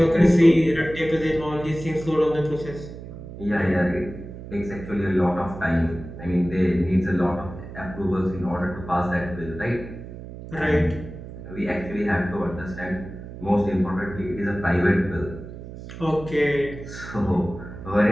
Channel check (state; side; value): noise; right; hum, 12 dB below the sound